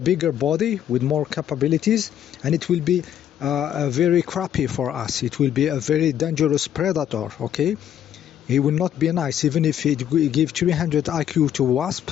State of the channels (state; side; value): quieter; right; 10.2 dB